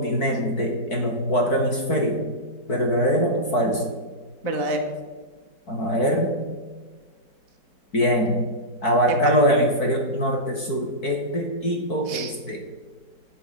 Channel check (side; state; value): right; late; 4.6 ms